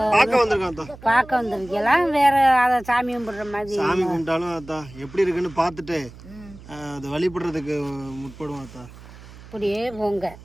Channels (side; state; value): right; noise; hum, 18 dB below the sound